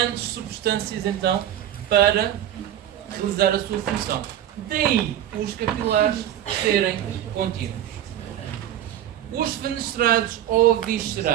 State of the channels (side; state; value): left; quieter; 11.5 dB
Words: substâncias então para realizar a sua função. Daí os capilares serem contínuos. Os fenestrados ou